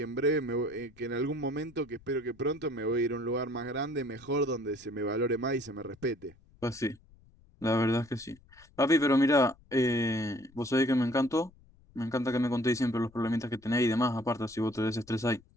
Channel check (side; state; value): left; noise; rumble, 27 dB below the sound